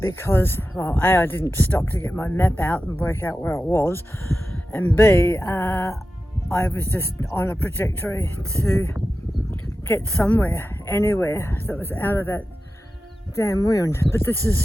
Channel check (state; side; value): normal; both; correlation 0.93